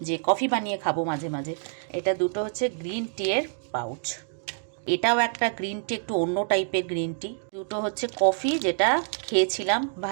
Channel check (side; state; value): left; silent; digital silence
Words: যে কফি বানিয়ে খাবো মাঝে মাঝে। এটা দুটো হচ্ছে গ্রিন টি এর পাউচ, এটাও একটা গ্রিন টি, একটু অন্য টাইপের গ্রিন টি। দুটো হচ্ছে কফি, যেটা খেয়েছিলাম